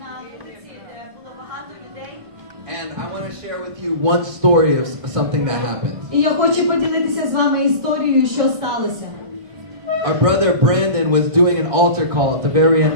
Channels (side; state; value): left; late; 1.5 ms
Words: вулиці, де було багато людей. And I want to share with you one story of something that happened. І я хочу поділитися з вами історією, що сталося. Our brother Brandon was doing an altar call at the very end